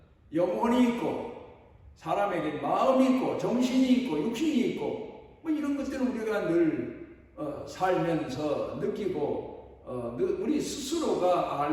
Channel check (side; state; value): both; identical; correlation 1.00